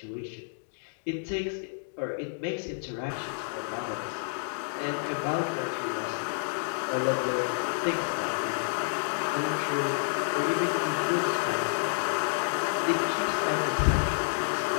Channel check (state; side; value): silent; right; digital silence